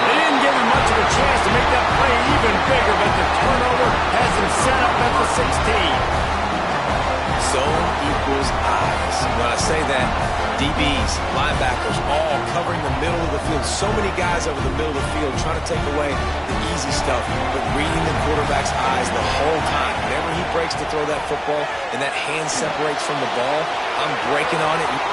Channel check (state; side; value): identical; both; correlation 1.00